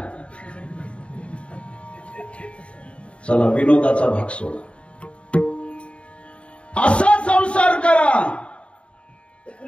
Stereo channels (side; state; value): right; late; 0.060 ms